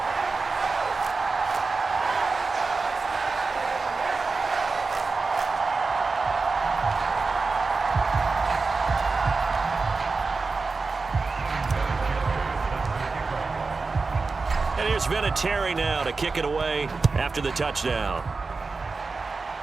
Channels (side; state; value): left; quieter; 4.1 dB